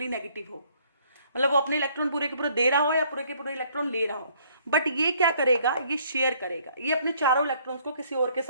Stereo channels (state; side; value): inverted; both; correlation -0.63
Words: नेगेटिव हो, मतलब वो अपने इलेक्ट्रॉन पूरे के पूरे दे रहा हो या पूरे के पूरे इलेक्ट्रॉन ले रहा हो। बट ये क्या करेगा, ये शेयर करेगा, ये अपने चारों इलेक्ट्रॉन्स को किसी और के